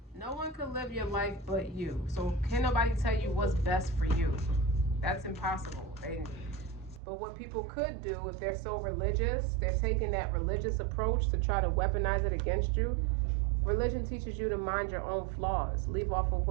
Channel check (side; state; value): left; drops out; at 7.0 s